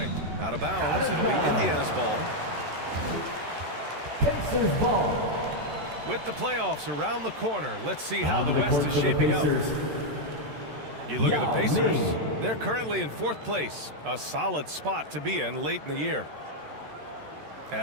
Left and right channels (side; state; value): left; late; 13 ms